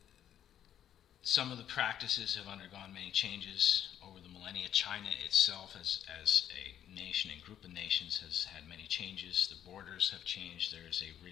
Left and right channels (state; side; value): quieter; right; 10.3 dB